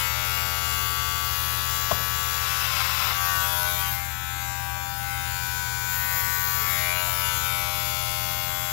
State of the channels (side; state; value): right; silent; digital silence